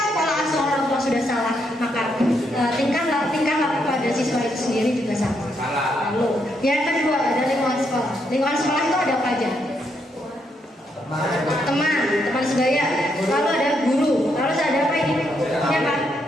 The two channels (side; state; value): both; normal; correlation 0.77